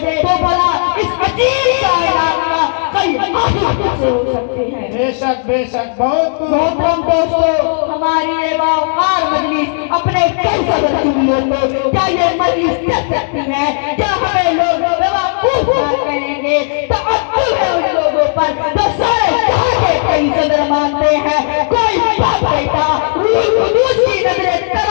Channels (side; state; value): right; silent; digital silence